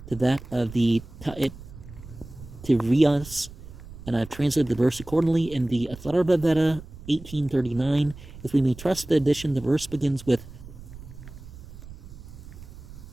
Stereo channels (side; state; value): right; noise; rumble, 16 dB below the sound